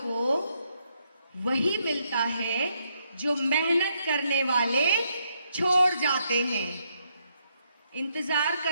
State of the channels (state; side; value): inverted; both; correlation -0.76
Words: को वही मिलता है जो मेहनत करने वाले छोड़ जाते हैं. इंतजार